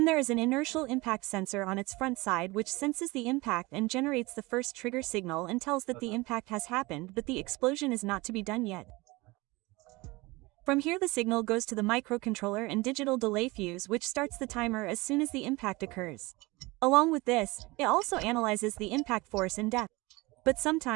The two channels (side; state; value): left; quieter; 22.8 dB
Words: there is an inertial impact sensor on its front side which senses the impact and generates the first trigger signal and tells that the impact has happened, but the explosion is not to be done yet. From here the signal goes to the microcontroller and digital delay fuse, which starts the timer as soon as the impact occurs. Along with this, it also analyzes the impact force and depth. But